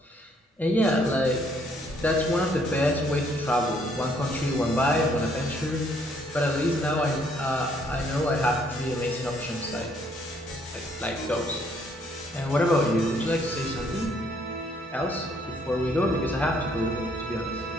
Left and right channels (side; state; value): both; normal; correlation 0.67